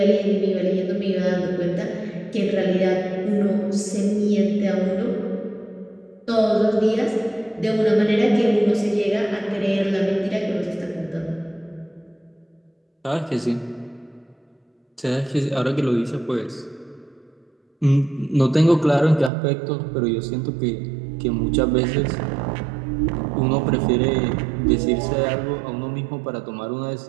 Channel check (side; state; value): left; drops out; at 19.3 s